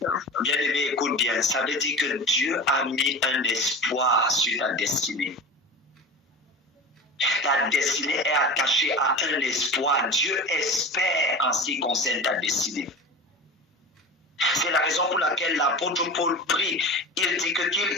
Bien-aimé, écoute bien. Ça veut dire que Dieu a mis un espoir sur ta destinée. Ta destinée est attachée à un espoir. Dieu espère en ce qui concerne ta destinée. C'est la raison pour laquelle l'apôtre Paul prie. Il dit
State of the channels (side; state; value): both; normal; correlation 0.31